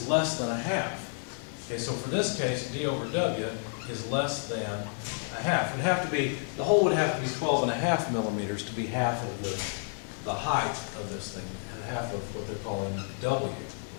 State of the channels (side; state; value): right; silent; 58 dB below the other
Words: less than a half. Okay, so for this case, D over W is less than a half. It would have to be, the hole would have to be 12.5 millimeters to be half of the height of this thing, and half of what they're calling W.